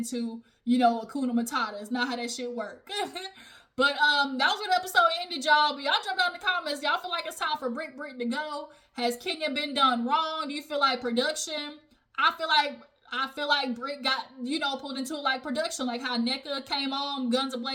you know, Hakuna Matata. It's not how that shit work. But that was where the episode ended, y'all. But y'all jump down in the comments. Y'all feel like it's time for Britt to go? Has Kenya been done wrong? Do you feel like production? I feel like Britt got, you know, pulled into like production, like how NECA came on, guns a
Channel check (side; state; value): both; identical; correlation 1.00